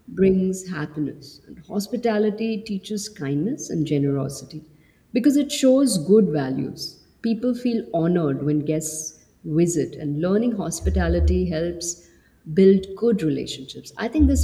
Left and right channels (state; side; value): identical; both; correlation 1.00